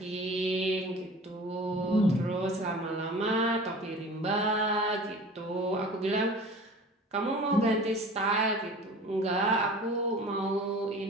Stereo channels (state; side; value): normal; both; correlation 0.41